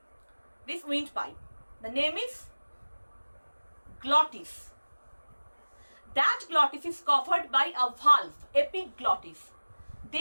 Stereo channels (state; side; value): inverted; both; correlation -1.00